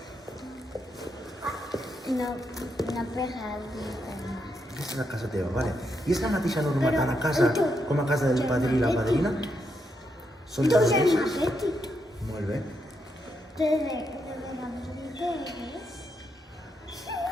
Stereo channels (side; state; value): both; normal; correlation 0.81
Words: no pegar al Aquesta és la casa teva, vale. I és la mateixa norma tant a casa com a casa del padrí i la padrina? Són les mateixes? Molt bé.